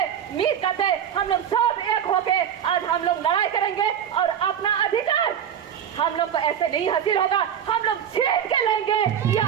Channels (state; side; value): quieter; left; 9.0 dB